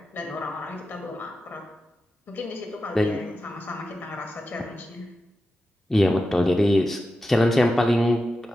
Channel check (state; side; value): normal; both; correlation 0.91